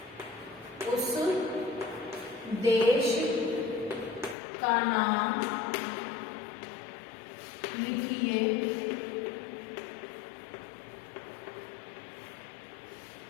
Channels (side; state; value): right; drops out; at 4.4 s